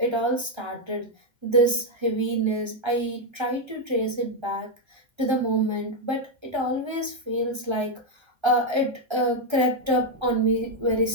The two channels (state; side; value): late; left; 1.3 ms